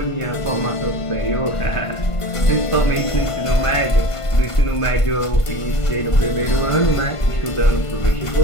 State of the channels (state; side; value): late; right; 1.5 ms